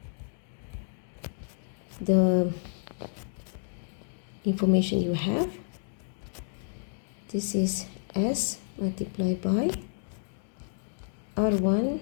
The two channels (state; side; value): silent; right; digital silence